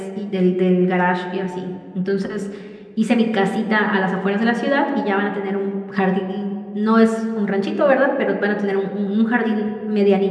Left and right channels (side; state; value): both; identical; correlation 1.00